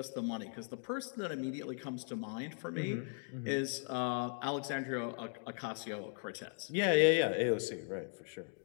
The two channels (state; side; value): silent; right; 52 dB below the other